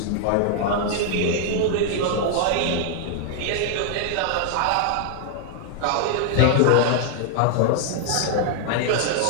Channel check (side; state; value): both; different; correlation -0.01